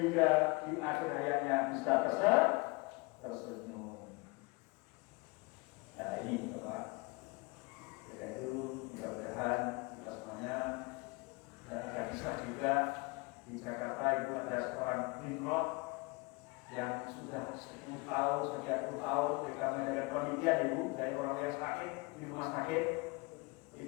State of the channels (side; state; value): right; quieter; 27.0 dB